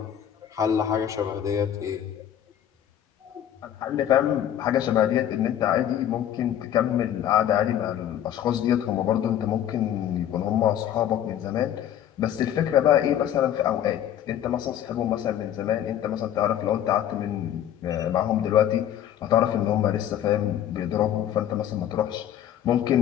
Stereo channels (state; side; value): quieter; right; 10.7 dB